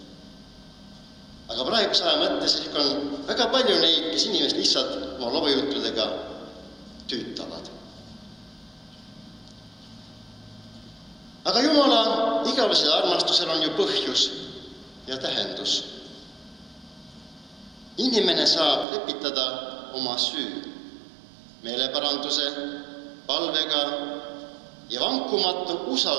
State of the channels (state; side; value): drops out; left; at 18.9 s